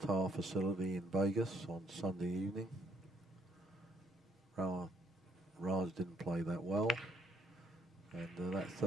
facility in Vegas on Sunday evening. Raj didn't play that well, and that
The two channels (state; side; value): normal; both; correlation 0.68